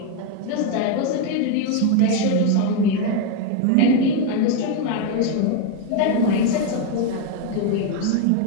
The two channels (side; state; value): both; different; correlation 0.01